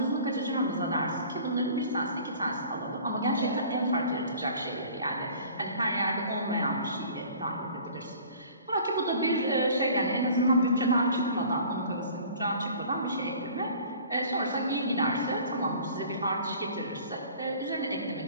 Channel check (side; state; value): both; inverted; correlation -0.48